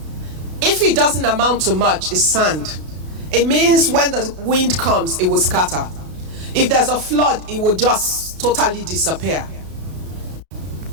If it doesn't amount to much, it's sand. It means when the wind comes, it will scatter. If there's a flood, it will just totally disappear.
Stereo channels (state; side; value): late; left; 33 ms